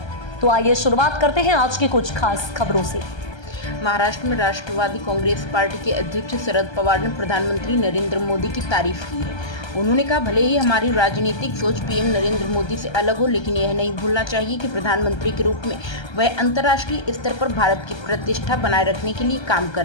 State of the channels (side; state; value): right; late; 1.3 ms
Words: तो आइए शुरुआत करते हैं आज की कुछ खास खबरों से। महाराष्ट्र में राष्ट्रवादी कांग्रेस पार्टी के अध्यक्ष शरद पवार ने प्रधानमंत्री नरेंद्र मोदी की तारीफ की है। उन्होंने कहा, भले ही हमारी राजनीतिक सोच पीएम नरेंद्र मोदी से अलग हो, लेकिन यह नहीं भूलना चाहिए कि प्रधानमंत्री के रूप में वह अंतर्राष्ट्रीय स्तर पर भारत की प्रतिष्ठा बनाए रखने के लिए काम